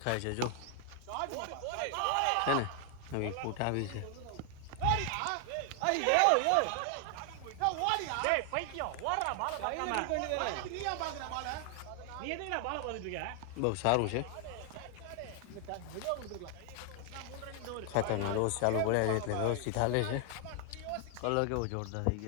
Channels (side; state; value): both; different; correlation 0.00